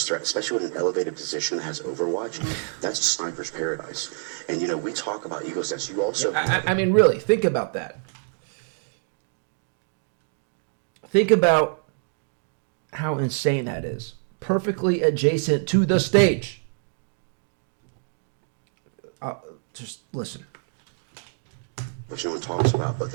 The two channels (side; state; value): left; silent; digital silence